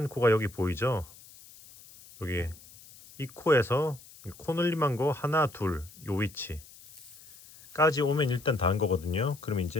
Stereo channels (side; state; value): left; noise; hiss, 21 dB below the sound